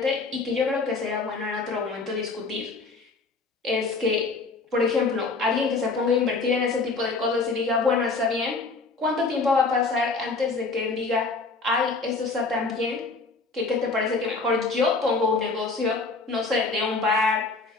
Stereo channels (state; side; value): quieter; right; 3.9 dB